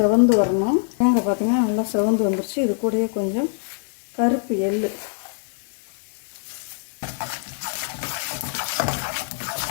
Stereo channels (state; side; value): silent; right; 63 dB below the other